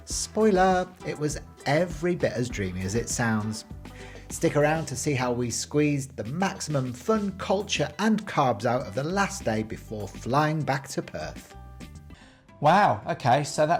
Spoiler, it was every bit as dreamy as it sounds. Stick around to see how we squeezed the maximum fun, culture and carbs out of the last day before flying back to Perth. Wow, okay, so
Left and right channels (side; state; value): both; identical; correlation 1.00